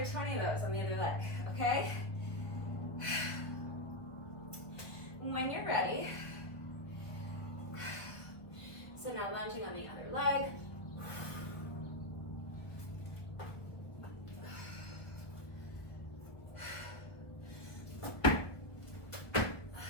20 of those on the other leg, okay? When you're ready, so now lunging on the other leg.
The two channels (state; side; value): late; right; 1.2 ms